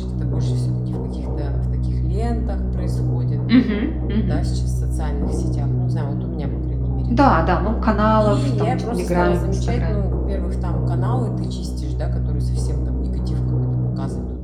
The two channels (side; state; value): both; identical; correlation 1.00